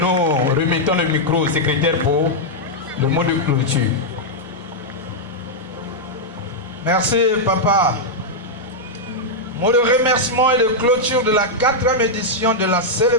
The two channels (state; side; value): normal; both; correlation -0.04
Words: remettons le micro au secrétaire pour le mot de clôture. Merci, papa. Mot de remerciement et de clôture de la 4e édition de la